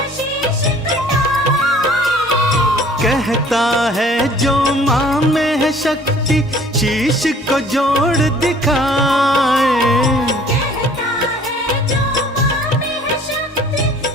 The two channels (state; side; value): normal; both; correlation 0.53